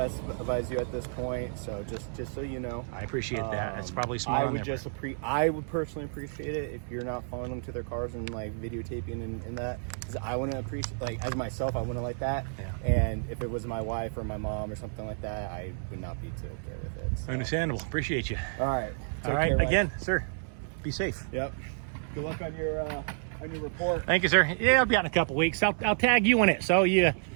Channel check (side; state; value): left; silent; digital silence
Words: advise you at this point, so just so you know. I appreciate that. It's probably smart I on would their just I would personally appreciate it if you're not following them to their cars and like videotaping and that, because I wouldn't appreciate, like, as myself, I wouldn't like that. Yeah. And if it was my wife or my mom or something like that, I would not be too okay with it. So. Understandable. Appreciate you. All right. All right. Again, sir, be safe. Yep. Good luck on your report. Thank you, sir. Yeah, I'll be out in a couple weeks. I'll tag you in it. So